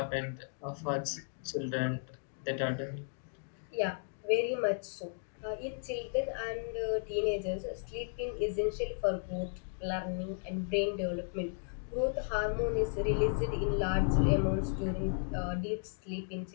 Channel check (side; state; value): right; silent; digital silence